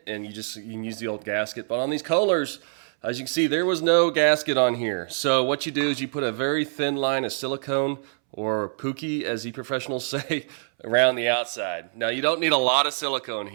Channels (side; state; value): left; silent; 62 dB below the other